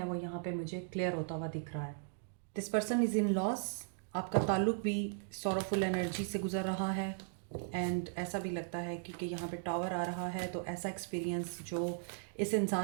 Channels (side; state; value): left; silent; digital silence